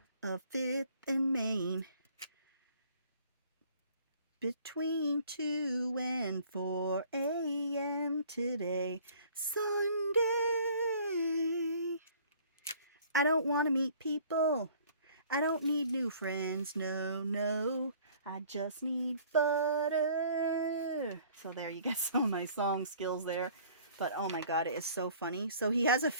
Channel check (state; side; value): inverted; both; correlation -0.54